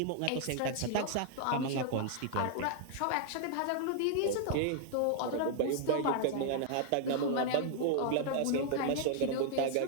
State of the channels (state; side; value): different; both; correlation -0.01